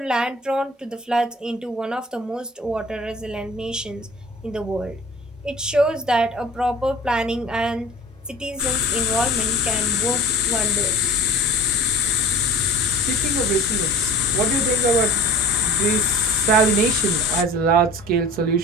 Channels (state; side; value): normal; both; correlation 0.42